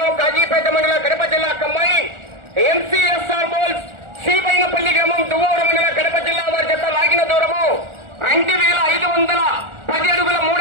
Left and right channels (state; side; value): late; left; 1.4 ms